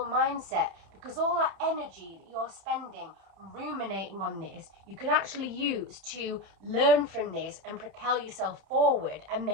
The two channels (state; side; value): late; left; 30 ms